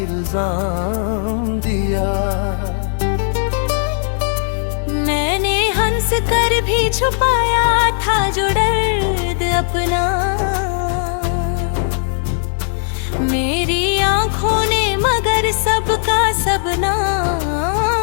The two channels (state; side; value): silent; right; 68 dB below the other